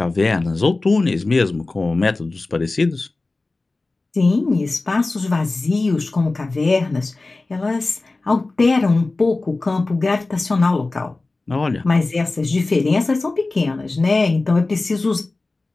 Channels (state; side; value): quieter; right; 3.3 dB